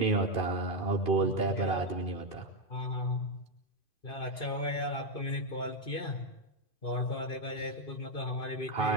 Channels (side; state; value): right; late; 2.5 ms